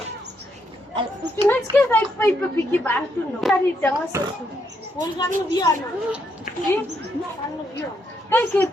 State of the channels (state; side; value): normal; both; correlation 0.76